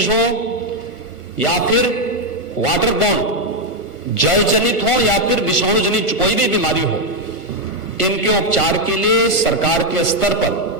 हो या फिर वाटर बॉर्न जल जनित हो या फिर विषाणु जनित कोई भी बीमारी हो, इनके उपचार के लिए सरकार के स्तर पर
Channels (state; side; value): late; right; 1.4 ms